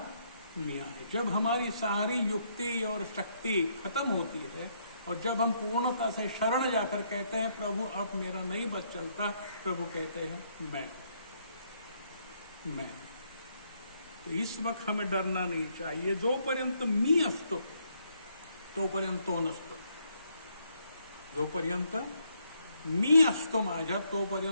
मी आहे. जब हमारी सारी युक्ति और शक्ति खत्म होती है और जब हम पूर्णता से शरण जाकर कहते हैं प्रभु अब मेरा नहीं बस चलता, प्रभु कहते हैं मैं. तो इस वक्त हमें डरना नहीं चाहिए. जोपर्यंत मी असतो तोपर्यंत तो नसतो. जोपर्यंत मी असतो माझ्या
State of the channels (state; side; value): inverted; both; correlation -0.72